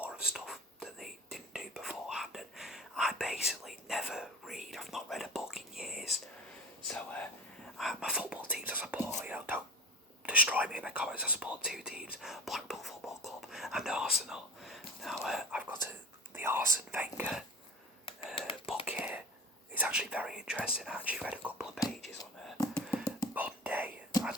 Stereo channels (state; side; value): normal; both; correlation 0.34